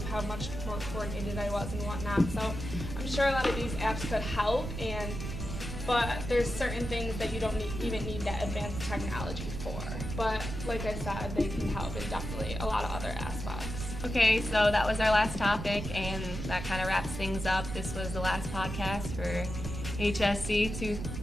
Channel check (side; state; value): right; noise; rumble, 6 dB below the sound